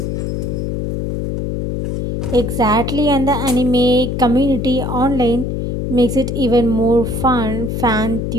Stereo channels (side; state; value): left; noise; hum, 2 dB below the sound